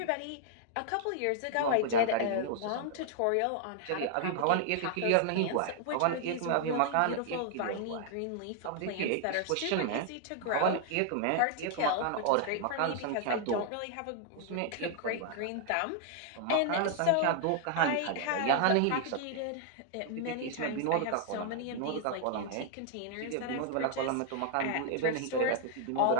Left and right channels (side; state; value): both; different; correlation 0.00